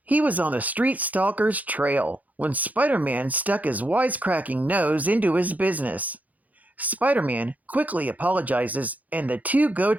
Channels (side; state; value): left; late; 0.077 ms